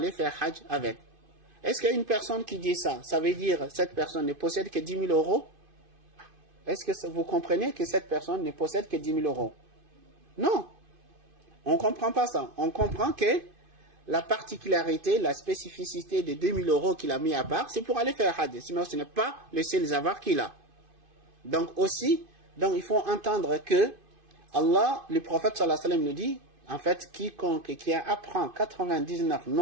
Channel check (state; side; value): late; left; 2.5 ms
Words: faire Hajj avec. Est-ce qu'il y a une personne qui dit ça? Ça veut dire que cette personne ne possède que 10 000 €? Est-ce que vous comprenez que cette personne ne possède que 10 000 €? Non. On ne comprend pas ça. On comprend que la particularité, la spécificité des 2 000 € qu'il a mis à part, c'est pour aller faire Hajj. Sinon, ce n'est pas le seul avoir qu'il a. Donc aussi, il faut entendre que Allah, le prophète sallallahu alayhi wa sallam nous dit, en fait, quiconque qui apprend 99